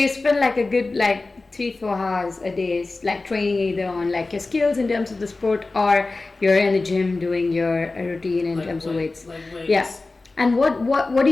spend a good 3-4 hours a day training either on your skills in terms of the sport, or you're in the gym doing your routine in terms of weights. Weights. Yeah. And what do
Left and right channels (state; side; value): quieter; right; 3.4 dB